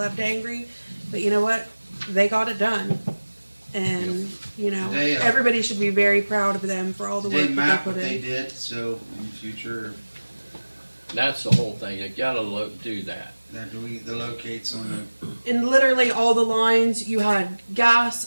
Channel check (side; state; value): both; inverted; correlation -1.00